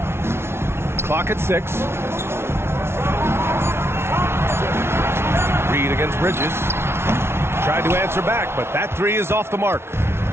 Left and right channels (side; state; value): left; late; 0.12 ms